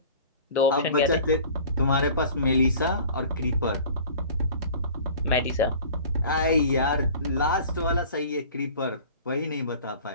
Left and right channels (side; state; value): both; inverted; correlation -0.44